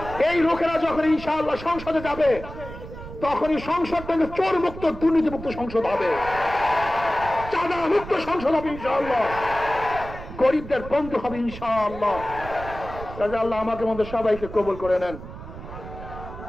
এই লোকেরা যখন ইনশাআল্লাহ সংসদে যাবে, তখনই সংসদ থেকে চোর মুক্ত, দুর্নীতি মুক্ত সংসদ হবে, চাঁদা মুক্ত সংসদ হবে ইনশাআল্লাহ, গরিবদের বন্ধু হবে ইনশাআল্লাহ। কাজে আল্লাহ আমাকে মধ্যে সবাইকে কবুল করে নেন,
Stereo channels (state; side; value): noise; right; rumble, 12 dB below the sound